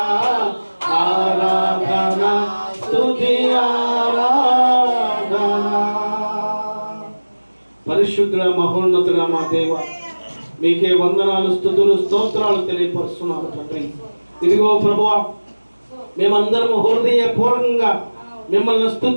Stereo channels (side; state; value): both; inverted; correlation -1.00